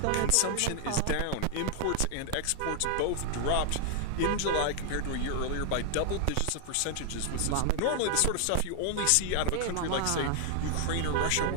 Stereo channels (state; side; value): different; both; correlation 0.00